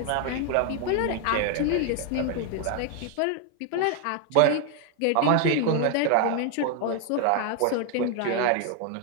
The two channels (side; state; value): both; different; correlation 0.00